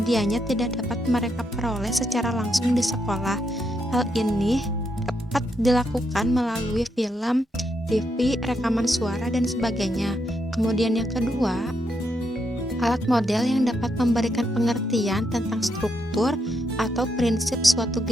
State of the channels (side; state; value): both; normal; correlation 0.79